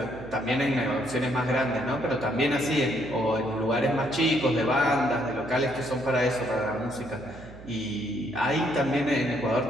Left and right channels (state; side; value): noise; right; hum, 17 dB below the sound